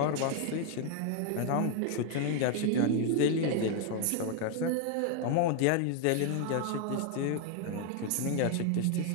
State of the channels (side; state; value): both; different; correlation 0.01